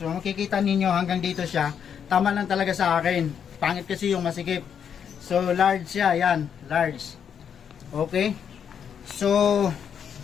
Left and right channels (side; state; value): right; quieter; 7.9 dB